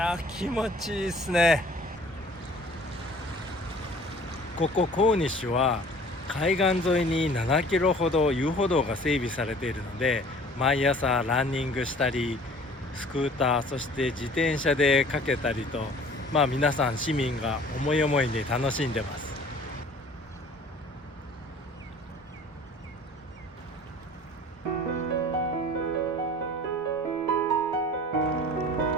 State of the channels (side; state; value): both; normal; correlation 0.49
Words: 気持ちいいですね。ここコーニッシュは海岸沿いに7キロほど遊歩道が整備されているので、毎朝ランニングしたりスクーター、そして自転車でかけたりと、皆さん市民が思い思いに楽しんでます。